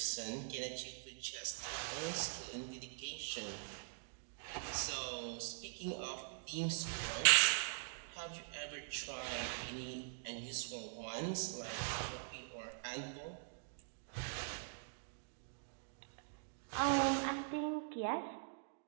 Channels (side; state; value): left; silent; digital silence